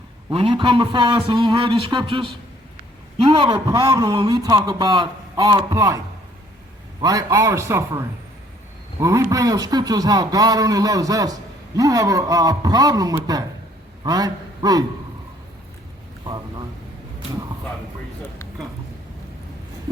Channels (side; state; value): both; normal; correlation 0.61